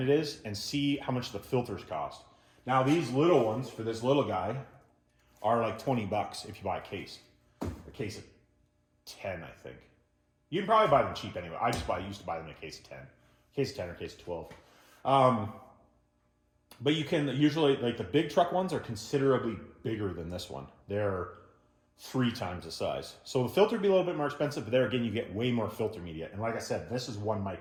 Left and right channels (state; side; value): identical; both; correlation 1.00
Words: it is and see how much the filters cost. Now these little ones, for this little guy, are like 20 bucks if you buy a case of 10, I think. You can probably buy them cheap anyway. I used to buy them in a case of 10. Case of 10 or case of 12. But you can usually, like the big truck ones are considerably bigger than this one. They're 3 times the size. So the filter would be a little bit more expensive, but there again, you get way more filter media. And like I said, this is 1